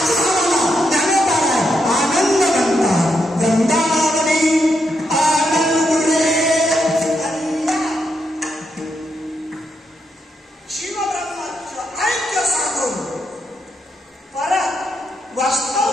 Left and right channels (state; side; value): normal; both; correlation 0.80